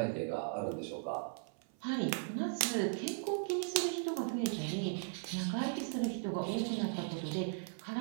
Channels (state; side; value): silent; left; 53 dB below the other